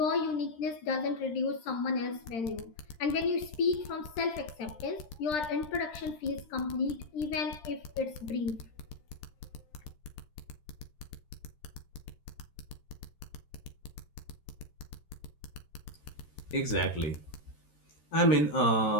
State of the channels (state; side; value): late; right; 13 ms